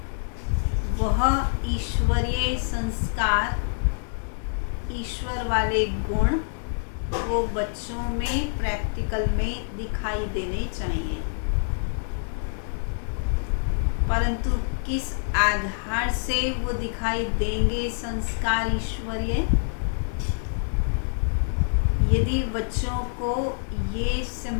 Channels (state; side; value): silent; right; digital silence